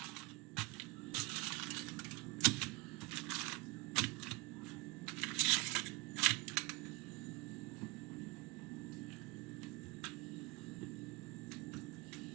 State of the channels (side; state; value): left; quieter; 24.9 dB